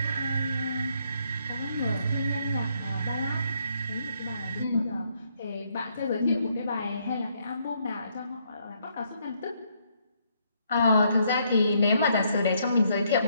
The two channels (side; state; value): both; inverted; correlation -0.72